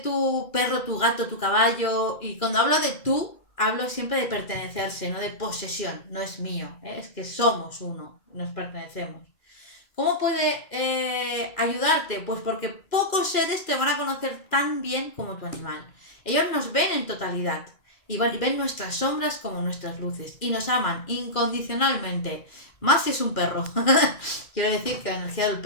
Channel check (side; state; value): right; late; 2.4 ms